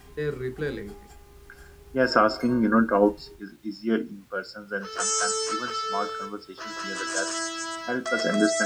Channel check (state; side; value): identical; both; correlation 1.00